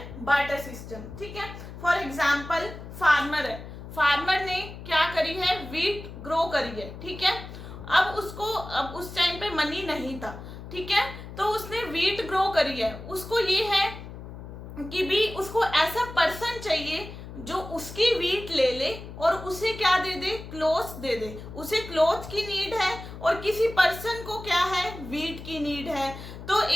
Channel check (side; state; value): left; noise; hum, 12 dB below the sound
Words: बार्टर सिस्टम, ठीक है। फॉर एग्जाम्पल, फार्मर है, फार्मर ने क्या करी है, वीट ग्रो करी है, ठीक है। अब उस टाइम पे मनी नहीं था, ठीक है, तो उसने वीट ग्रो करी है। उसको ये है कि भी उसको ऐसा पर्सन चाहिए जो उसकी वीट ले ले और उसे क्या दे दे, क्लोथ दे दे। उसे क्लोथ की नीड है और किसी पर्सन को क्या है, वीट की नीड है। तो